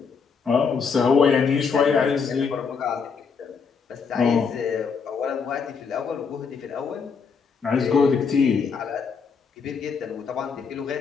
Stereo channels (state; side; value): quieter; right; 5.7 dB